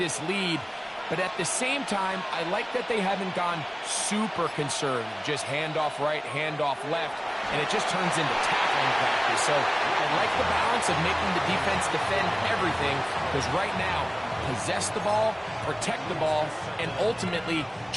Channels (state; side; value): identical; both; correlation 1.00